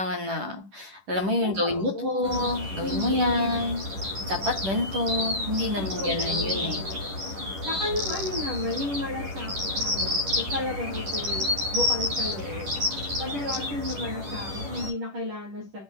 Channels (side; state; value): left; late; 10 ms